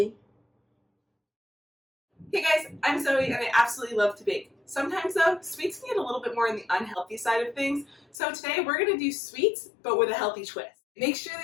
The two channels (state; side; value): drops out; right; at 8.2 s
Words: Hey guys, I'm Zoe and I absolutely love to bake. Sometimes though, sweets can get a little bit more on the unhealthy side of things. So today we're going to do sweets, but with a healthy twist. Make sure